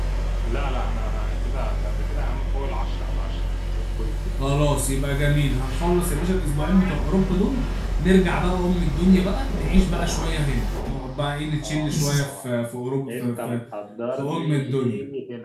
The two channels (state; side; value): identical; both; correlation 1.00